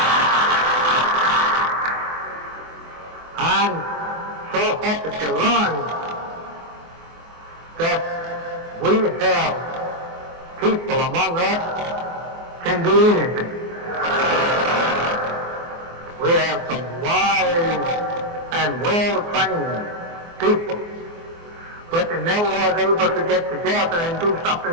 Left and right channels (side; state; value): left; late; 24 ms